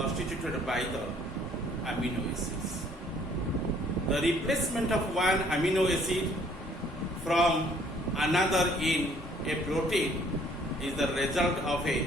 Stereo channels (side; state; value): both; normal; correlation 0.60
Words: by the amino acids. The replacement of one amino acid from another in a protein is the result of